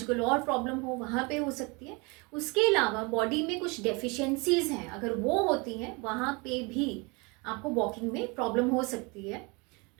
और प्रॉब्लम हो वहाँ पे हो सकती है. उसके अलावा बॉडी में कुछ डेफिशिएंसीज हैं, अगर वो होती हैं वहाँ पे भी आपको वॉकिंग में प्रॉब्लम हो सकती है.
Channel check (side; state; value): left; quieter; 28.8 dB